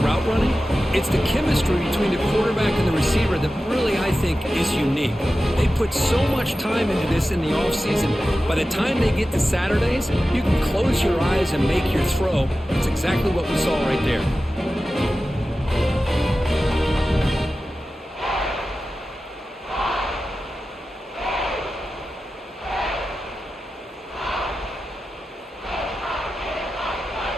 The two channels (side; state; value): both; normal; correlation 0.94